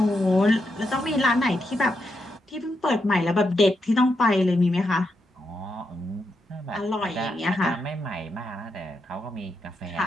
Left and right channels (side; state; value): both; normal; correlation 0.83